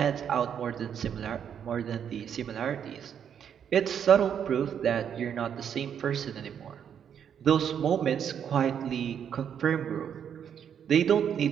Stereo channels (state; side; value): quieter; left; 8.4 dB